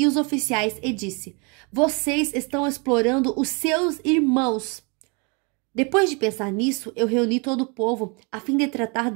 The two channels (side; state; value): left; quieter; 32.0 dB